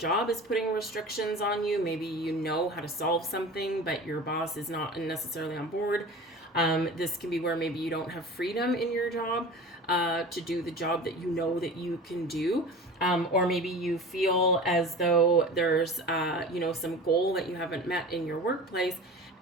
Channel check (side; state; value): both; normal; correlation 0.36